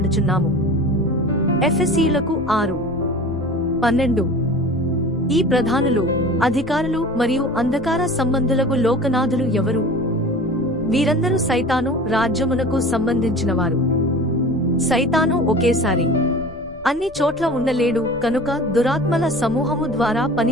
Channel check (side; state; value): left; noise; rumble, 20 dB below the sound